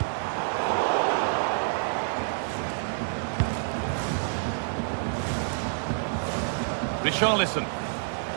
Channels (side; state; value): left; silent; digital silence